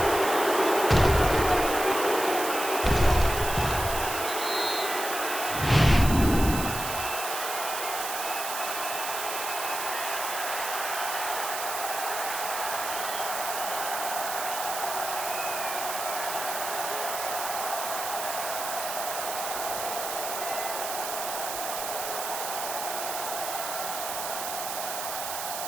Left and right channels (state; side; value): noise; right; hiss, 5 dB below the sound